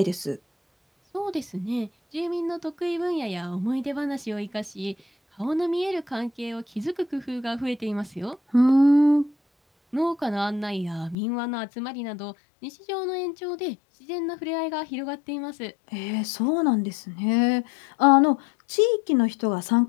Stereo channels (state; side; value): drops out; right; at 11.2 s